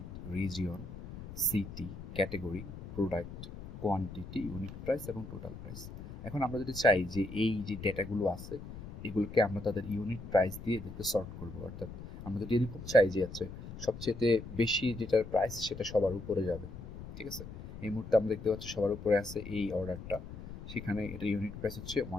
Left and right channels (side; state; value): left; noise; rumble, 12 dB below the sound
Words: region, city, category, product, quantity, unit price এবং টোটাল প্রাইস। এখন আমরা যদি চাই যে এই যে ডেটাগুলো আছে এগুলোকে আমরা তাদের ইউনিট প্রাইস দিয়ে এদেরকে সর্ট করবো, অর্থাৎ আমরা যদি এরকম চাই যে আছে সবচেয়ে বেশি যেটার প্রাইস সেটা সবার উপরে যাবে, ঠিক আছে। এই মুহূর্তে আমরা দেখতে পাচ্ছি সবার উপরে আছে এই অর্ডারটা, সেখানে এটা ইউনিট প্রাইস হচ্ছে